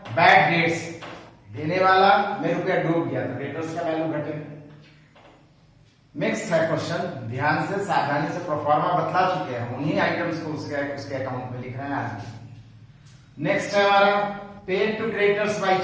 बैड डेट्स, देने वाला में रुपया डूब गया तो क्रेडिटर्स का वैल्यू घटेगा। नेक्स्ट है क्वेश्चन, ध्यान से सावधानी से प्रोफार्मा बतला चुके हैं, उन्हीं आइटम्स को उसके अकाउंट में लिख रहे हैं आज। नेक्स्ट है हमारा paid to creditors by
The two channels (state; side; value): identical; both; correlation 1.00